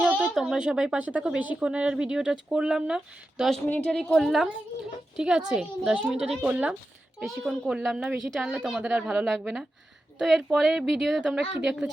হোক, তোমরা সবাই পাশে থাকো। বেশিক্ষণের আর ভিডিওটা করলাম না, 10 মিনিটেরই করলাম, ঠিক আছে? 10 মিনিটেরই করলাম, বেশিক্ষণ করলাম না, বেশি টানলে তোমাদের আর ভালো লাগবে না। তো এরপরে ভিডিওতে তোমরা কি দেখতে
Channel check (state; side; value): normal; both; correlation 0.91